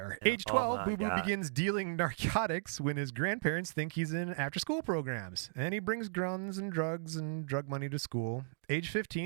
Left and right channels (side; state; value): left; silent; digital silence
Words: Age 12, Boo Boo begins dealing narcotics when his grandparents think he's in after-school programs. And he brings guns and drugs and drug money to school. Age